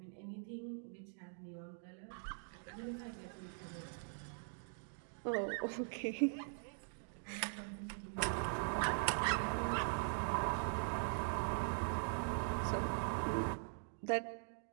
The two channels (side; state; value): left; silent; digital silence